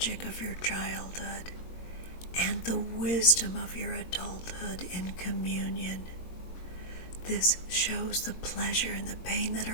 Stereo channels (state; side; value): late; right; 21 ms